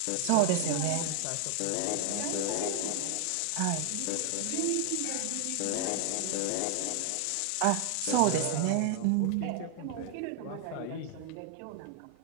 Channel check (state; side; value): different; both; correlation 0.00